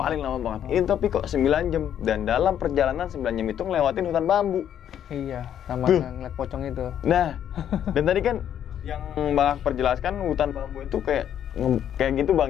lama banget. Ini tapi kok 9 jam dan dalam perjalanan 9 jam itu ngelewatin hutan bambu. Iya, sama ngeliat pocong itu. Nah, dan tadi kan yang Bang Akbar jelaskan hutan bambu itu kayak gitu Bang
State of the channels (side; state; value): right; quieter; 9.8 dB